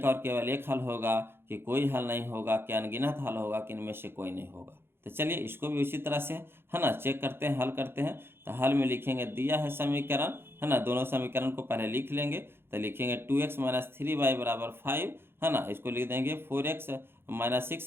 और केवल एक हल होगा, कि कोई हल नहीं होगा, कि अनगिनत हल होगा, कि इनमें से कोई नहीं होगा। तो चलिए इसको भी उसी तरह से, है ना, चेक करते हैं, हल करते हैं। तो हल में लिखेंगे दिया है समीकरण, है ना, दोनों समीकरण को पहले लिख लेंगे। तो लिखेंगे 2x - 3y बराबर 5, है ना, इसको लिख देंगे 4x -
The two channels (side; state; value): left; late; 0.11 ms